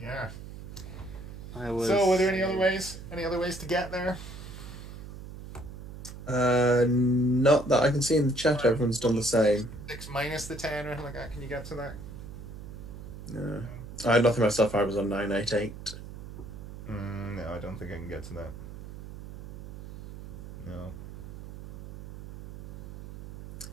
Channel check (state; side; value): noise; right; hum, 12 dB below the sound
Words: yeah. So, were there any other ways? Any other ways to get there? Not that I can see in the chat. Everyone's done the same. 6 minus the 10 or anything like that. Can you get to that? No, I had nothing myself. I was on 988. No, I don't think I can get to that. No.